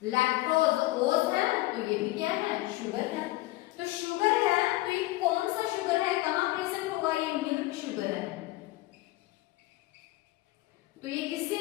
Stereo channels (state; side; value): quieter; right; 18.7 dB